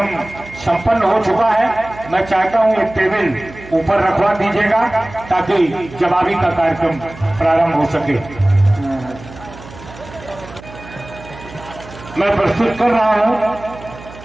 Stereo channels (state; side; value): noise; right; hum, 17 dB below the sound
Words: संपन्न हो चुका है, मैं चाहता हूं एक टेबल ऊपर रखवा दीजिएगा ताकि जवाबी का कार्यक्रम प्रारंभ हो सके। मैं प्रस्तुत कर रहा हूं